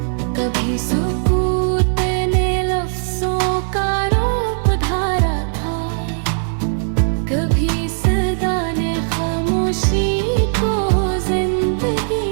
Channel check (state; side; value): silent; left; 67 dB below the other